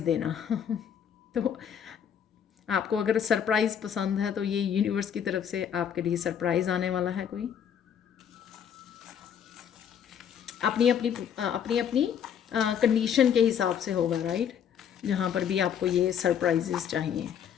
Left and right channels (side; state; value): right; quieter; 8.5 dB